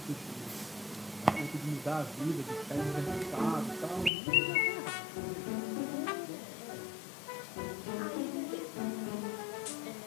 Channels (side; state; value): right; drops out; at 4.1 s